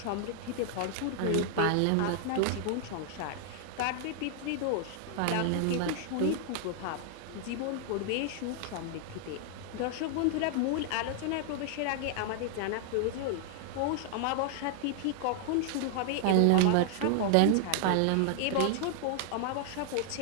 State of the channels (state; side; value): different; both; correlation -0.01